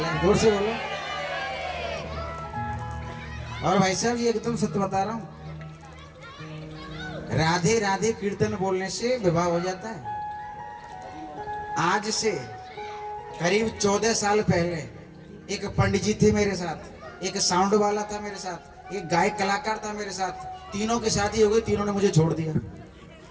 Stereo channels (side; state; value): both; identical; correlation 1.00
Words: जोर से बोलो। और भाई साहब ये एकदम सत्य बता रहा हूं, राधे राधे कीर्तन बोलने से विवाह हो जाता है। आज से करीब 14 साल पहले एक पंडित जी थे मेरे साथ, एक साउंड वाला था मेरे साथ, एक गायक कलाकार था मेरे साथ, तीनों की शादी हो गई, तीनों ने मुझे छोड़ दिया।